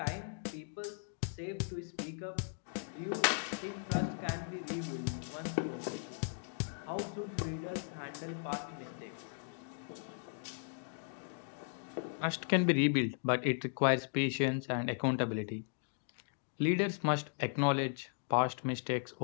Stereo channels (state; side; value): silent; right; digital silence